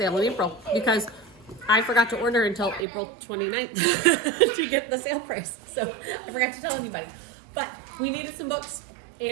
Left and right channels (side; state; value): left; drops out; at 2.9 s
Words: in April because I forgot to order until April 29th to get the sale price. So I forgot to tell anybody. But we needed some books